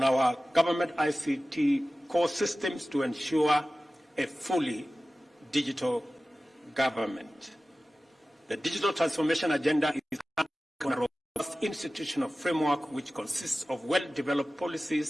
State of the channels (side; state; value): both; normal; correlation 0.96